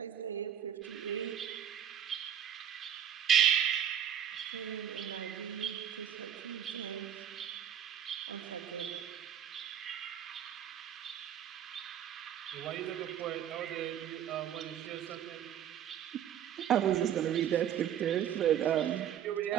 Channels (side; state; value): left; quieter; 9.7 dB